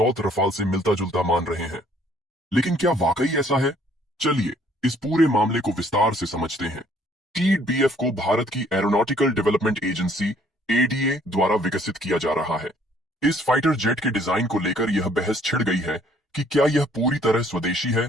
रफाल से मिलता जुलता मान रहे हैं। लेकिन क्या वाकई ऐसा है? चलिए इस पूरे मामले को विस्तार से समझते हैं। टेड बीएफ को भारत की एरोनॉटिकल डेवलपमेंट एजेंसी एडीए द्वारा विकसित किया जा रहा है। इस फाइटर जेट के डिजाइन को लेकर यह बहस छिड़ गई है कि क्या यह पूरी तरह स्वदेशी है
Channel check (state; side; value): normal; both; correlation 0.62